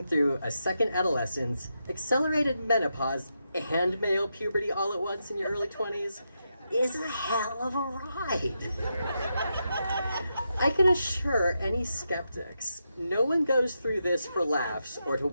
through a second adolescence, accelerated menopause, and male puberty all at once in your early 20s is a hell of a ride. I can assure any skeptics, no one goes through this for laughs or to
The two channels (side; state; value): both; inverted; correlation -0.85